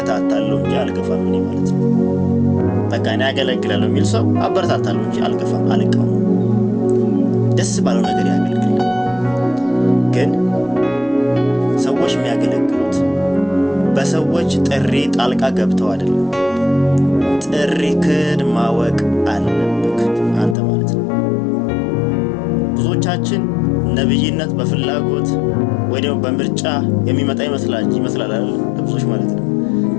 እንጂ አልገፋም እኔ ማለት ነው። በቃ እኔ አገለግላለሁ የሚል ሰው አበረታታለሁ እንጂ አልገፋም፣ አልቀውም። ደስ ባለው ነገር ያገልግል። ግን ሰዎች የሚያገለግሉት በሰዎች ጥሪ ጣልቃ ገብተው አይደለም። ጥሪክን ማወቅ አለብክ አንተ ማለት ነው። ብዙዎቻችን ነብይነት በፍላጎት ወይ ደግሞ በምርጫ የሚመጣ ይመስላል አይደል? ብዙዎች ማለት ነው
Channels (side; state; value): right; drops out; at 20.6 s